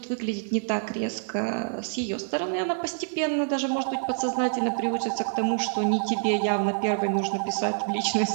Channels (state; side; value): silent; left; 60 dB below the other